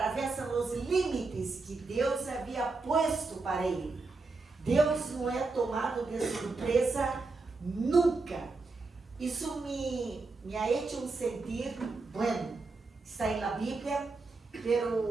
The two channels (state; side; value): quieter; left; 3.8 dB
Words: os limites que Deus havia posto para ele. Deus não é tomado de surpresa nunca. Isso me ha hecho sentir, está na Bíblia, mas